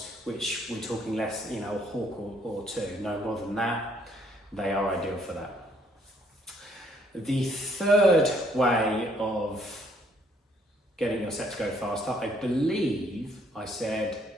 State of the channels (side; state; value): both; normal; correlation 0.66